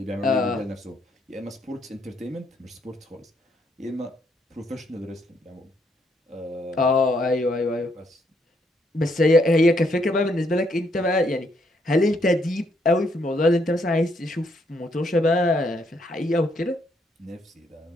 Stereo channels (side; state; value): both; normal; correlation 0.73